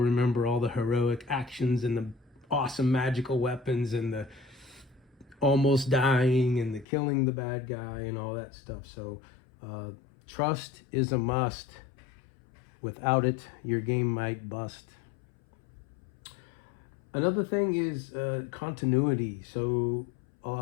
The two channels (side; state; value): right; drops out; at 6.9 s